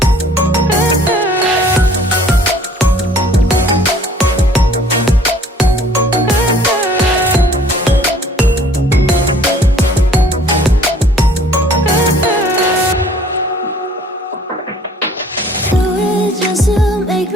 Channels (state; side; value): normal; both; correlation 0.54